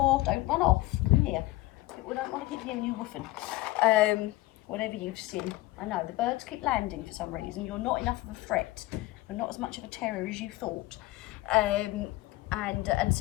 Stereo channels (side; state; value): right; quieter; 18.4 dB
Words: Don't run off. Come here. People don't want to keep hearing you woofing. whatever you've seen. I know, the birds keep landing for some reason. You're not enough of a threat. You're not as much of a terror as you thought. And